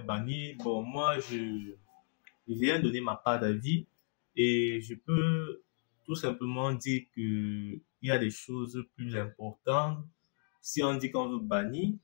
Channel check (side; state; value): right; silent; digital silence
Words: bannir. Bon, moi, je viens donner ma part d'avis et je peux tout simplement dire que il y a des choses plus importantes. Si on dit qu'on veut bannir,